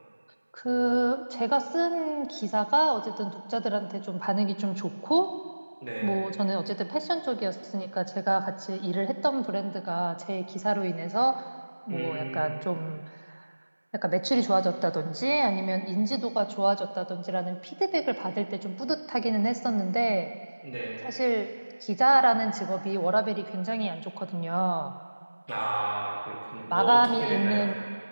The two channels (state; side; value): inverted; both; correlation -1.00